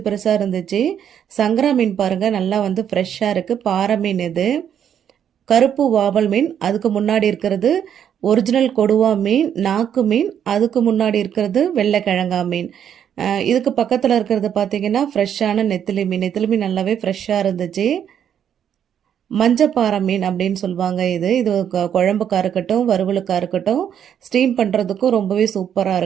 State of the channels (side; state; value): left; quieter; 9.0 dB